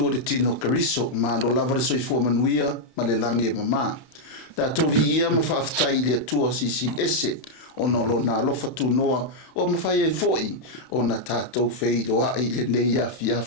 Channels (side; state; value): right; late; 31 ms